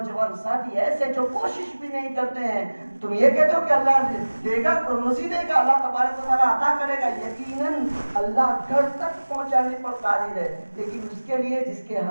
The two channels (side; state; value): both; inverted; correlation -1.00